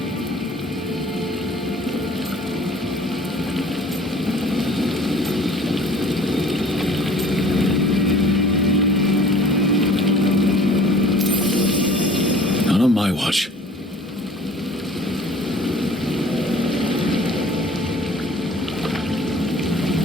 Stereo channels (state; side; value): normal; both; correlation 0.50